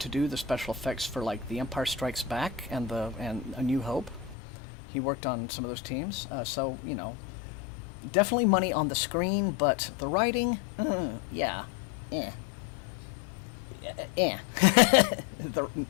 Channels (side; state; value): right; drops out; at 4.4 s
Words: do the special effects for like The Empire Strikes Back and A New Hope. He worked on some of those teams, so definitely money on the screen, but the writing, yeah,